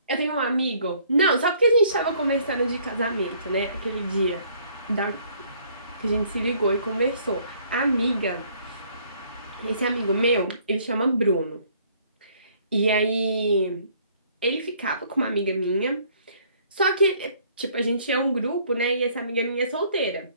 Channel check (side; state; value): both; inverted; correlation -0.61